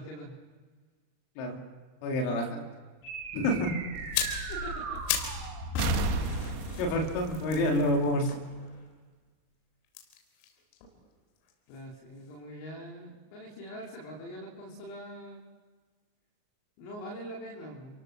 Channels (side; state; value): right; late; 38 ms